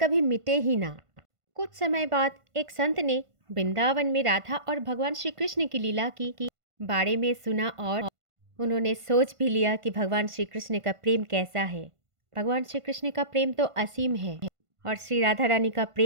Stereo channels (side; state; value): left; late; 1.5 ms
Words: मिटे ही ना? कुछ समय बाद एक संत ने वृंदावन में राधा और भगवान श्री कृष्ण की लीला की बारे में सुना, और उन्होंने सोच भी लिया कि भगवान श्री कृष्ण का प्रेम कैसा है। भगवान श्री कृष्ण का प्रेम तो असीम है, और श्री राधा रानी का